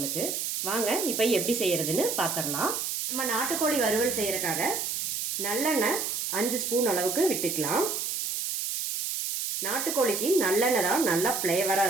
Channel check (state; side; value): noise; right; hiss, 2 dB below the sound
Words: வாங்க இப்ப எப்படி செய்யறதுன்னு பாத்திரலாம். நம்ம நாட்டுக்கோழி வறுவல் செய்யறதுக்காக நல்லெண்ணெய் 5 ஸ்பூன் அளவுக்கு விட்டுக்கலாம். நாட்டுக்கோழிக்கு நல்லெண்ணெய் தான் நல்லா ஃப்ளேவரா